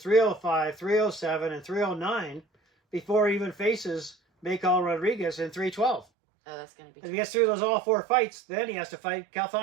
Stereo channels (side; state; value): left; drops out; at 6.1 s